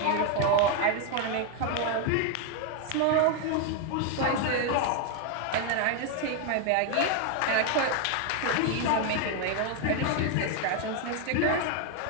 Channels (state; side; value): different; both; correlation 0.01